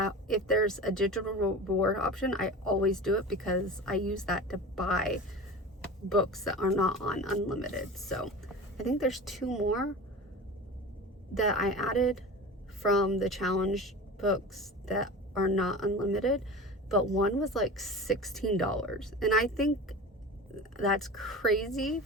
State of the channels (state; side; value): normal; both; correlation 0.33